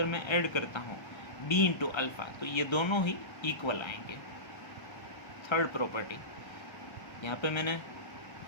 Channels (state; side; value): late; right; 1.3 ms